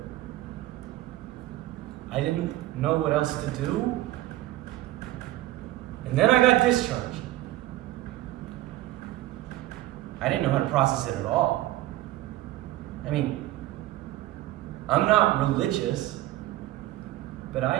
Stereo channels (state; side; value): quieter; left; 15.8 dB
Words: I didn't know what else to do. And then I got discharged. I didn't know how to process it at all. I mean, I'm not religious, but I